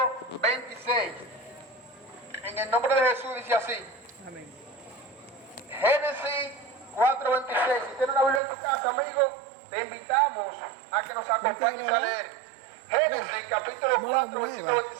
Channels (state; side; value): drops out; left; at 8.4 s